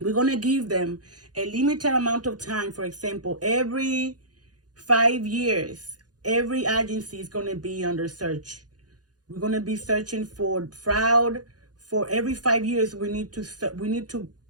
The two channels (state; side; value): late; left; 0.69 ms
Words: going to give them a limited amount of time. For example, every 5 years, every agency is going to be under search. We're going to be searching for fraud. For every 5 years, we need to